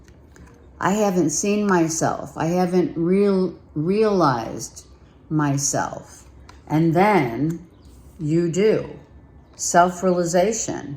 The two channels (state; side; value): identical; both; correlation 1.00